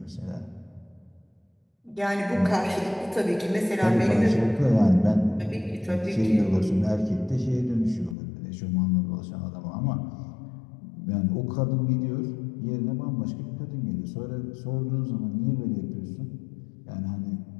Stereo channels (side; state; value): right; drops out; at 8.2 s